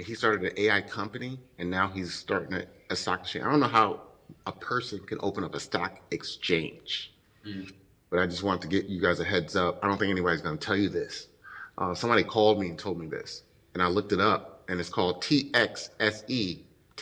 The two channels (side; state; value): both; identical; correlation 1.00